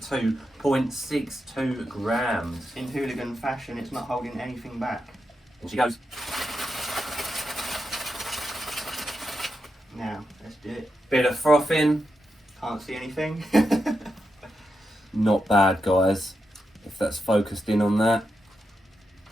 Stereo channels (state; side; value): normal; both; correlation 0.86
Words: grams. In Hooligan fashion, it's not holding anything back. And she goes. Now, let's do it. Bit of frothing. Can't see anything. Not bad, guys. If that's focused in on that.